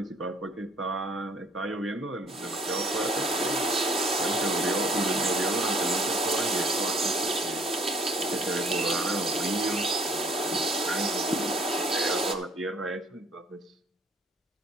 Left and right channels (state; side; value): normal; both; correlation 0.58